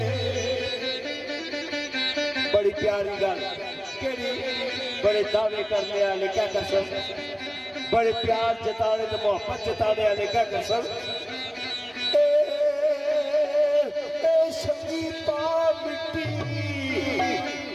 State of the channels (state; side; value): identical; both; correlation 1.00